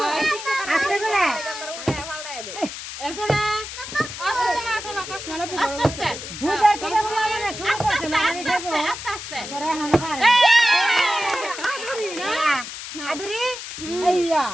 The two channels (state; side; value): noise; left; hiss, 9 dB below the sound